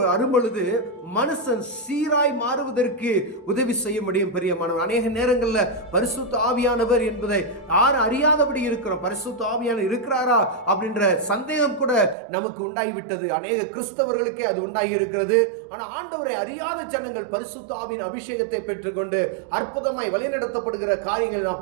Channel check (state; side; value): drops out; left; at 12.2 s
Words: அரும்பொழுது மனுஷன் சீராய் மாறுவதற்கு உதவி செய்ய முடியும் பிரியமானவர். அநேக நேரங்களில் பரிசுத்த ஆவியானவர் என்பதை யாரும் அறியாதபடி இருக்கிறோம். பரிசுத்த ஆவியானவர் இருக்கிறாரா அப்படின்ற சந்தேகம் கூட நமக்கு உண்டாகிவிட்டது. அநேக கிறிஸ்தவர்களுக்கே அது உண்டாகி இருக்கிறது. ஆனால் ஆண்டவரை அறியாத ஜனங்கள் பரிசுத்த ஆவியின் அபிஷேகத்தை பெற்றுக்கொண்டு அற்புதமாய் வழிநடத்தப்படுகிற காரியங்களை